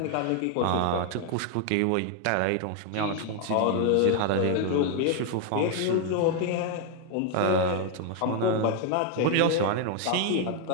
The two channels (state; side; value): different; both; correlation 0.00